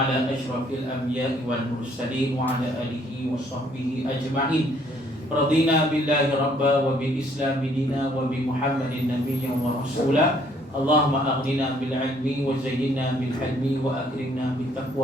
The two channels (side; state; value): both; normal; correlation 0.64